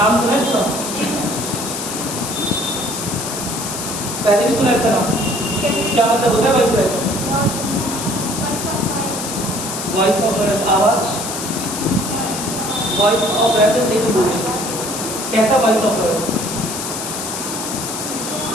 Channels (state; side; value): noise; left; hiss, 5 dB below the sound